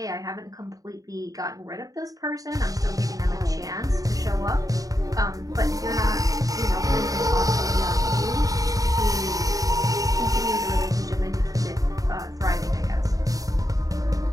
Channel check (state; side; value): late; left; 0.17 ms